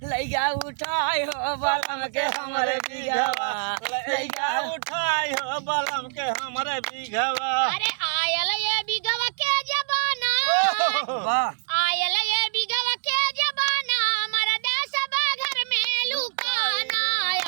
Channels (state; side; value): silent; left; 62 dB below the other